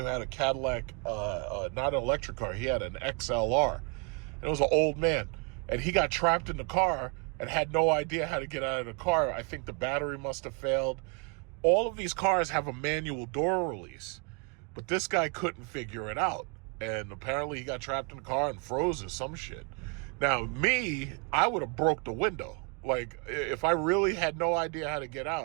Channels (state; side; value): quieter; left; 36.2 dB